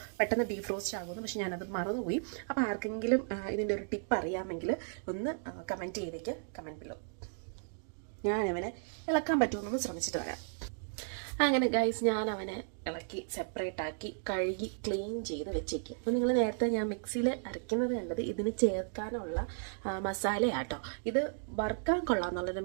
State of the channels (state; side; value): silent; left; digital silence